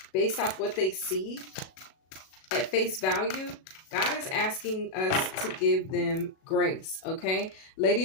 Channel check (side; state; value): right; late; 37 ms